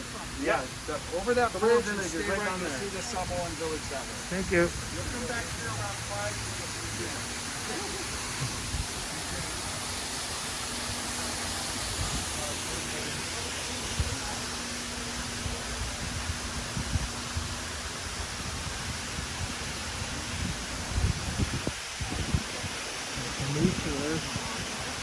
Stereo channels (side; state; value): both; identical; correlation 1.00